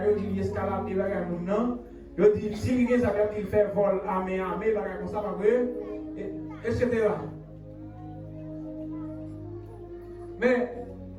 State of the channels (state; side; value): identical; both; correlation 1.00